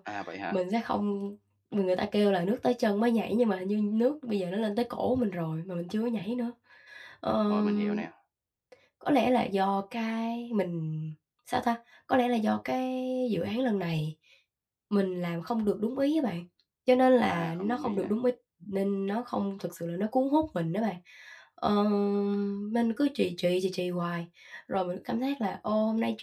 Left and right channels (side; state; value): both; identical; correlation 1.00